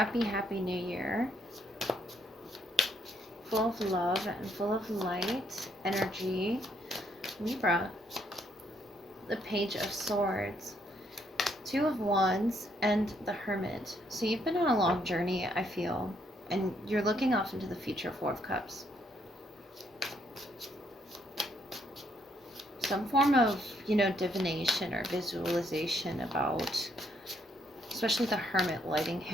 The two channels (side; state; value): both; normal; correlation 0.72